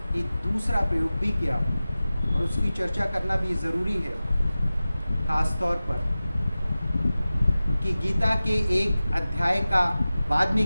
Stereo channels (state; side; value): inverted; both; correlation -0.96